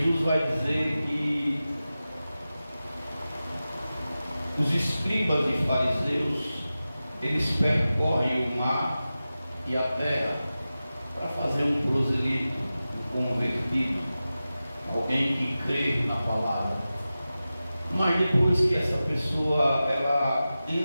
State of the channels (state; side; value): inverted; both; correlation -0.95